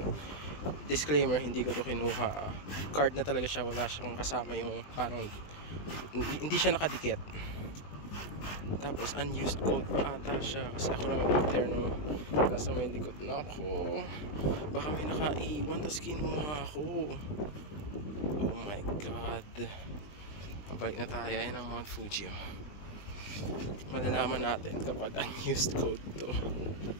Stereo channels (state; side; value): late; right; 20 ms